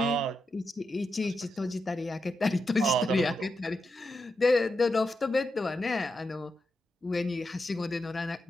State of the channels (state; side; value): normal; both; correlation 0.86